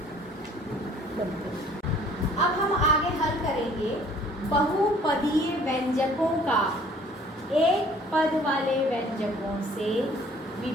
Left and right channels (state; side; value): normal; both; correlation 0.55